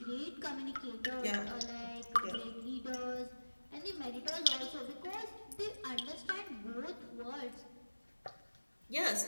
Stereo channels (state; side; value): inverted; both; correlation -1.00